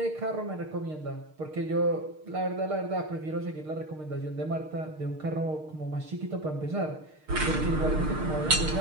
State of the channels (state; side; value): late; left; 6.5 ms